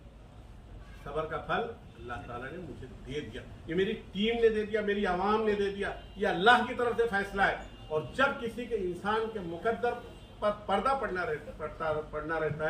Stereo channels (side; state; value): both; identical; correlation 1.00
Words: सबर का फल अल्लाह ताला ने मुझे दे दिया, ये मेरी टीम ने दे दिया, मेरी आवाम ने दे दिया, ये अल्लाह की तरफ से फैसला है। और जब किसी के इंसान के मुकद्दर पर पर्दा पड़ना रहता